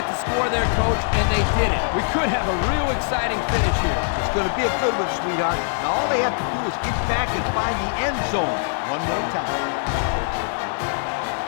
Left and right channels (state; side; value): silent; right; digital silence